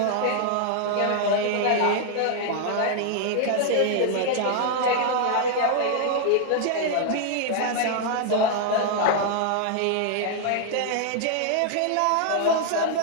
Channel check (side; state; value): both; different; correlation 0.00